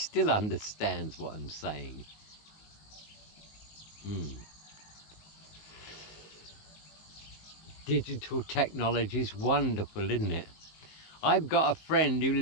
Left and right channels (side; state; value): right; late; 19 ms